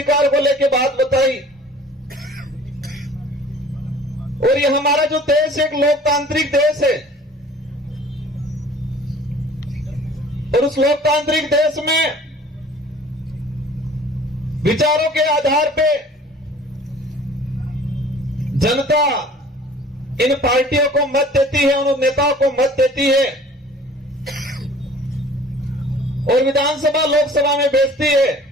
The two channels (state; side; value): normal; both; correlation 0.49